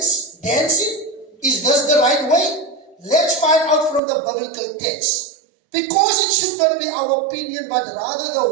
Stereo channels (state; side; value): drops out; left; at 4.0 s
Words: dancing? Is this the right way? Let's find out from the biblical text. Because it should not be our opinion, but rather